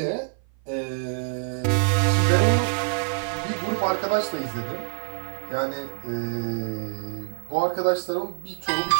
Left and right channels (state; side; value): silent; left; 55 dB below the other